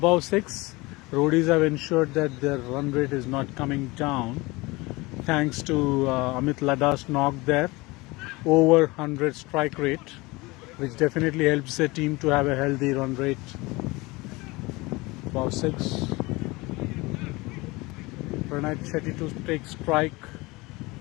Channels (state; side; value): quieter; right; 23.1 dB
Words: 6. Roadies have ensured that their run rate is not coming down thanks to Amit Ladda's knock there, over 100 strike rate, which definitely helps the team to have a healthy run rate. Above 6. Pranay Shetty to take strike.